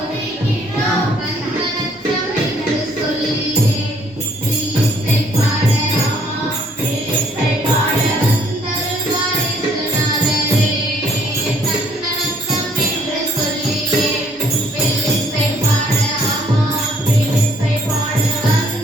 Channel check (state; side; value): normal; both; correlation 0.64